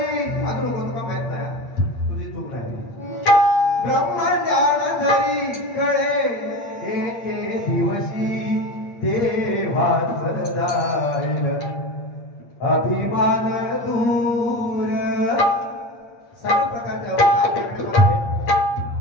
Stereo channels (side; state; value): right; late; 8.6 ms